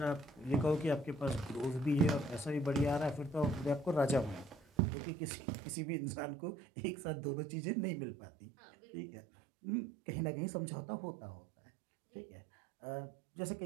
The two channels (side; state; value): left; drops out; at 4.7 s